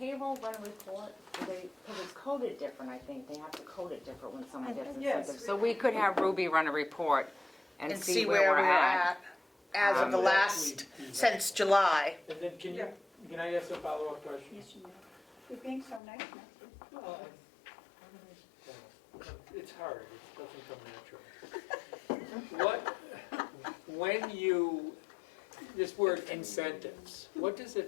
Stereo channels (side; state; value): right; drops out; at 16.0 s